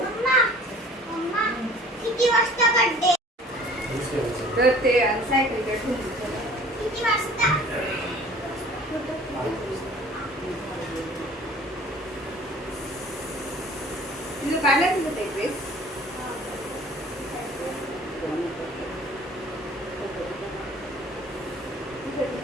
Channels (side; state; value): both; normal; correlation 0.49